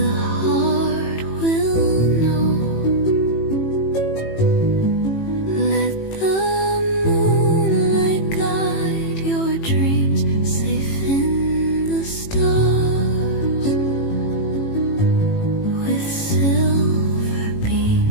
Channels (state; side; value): late; right; 18 ms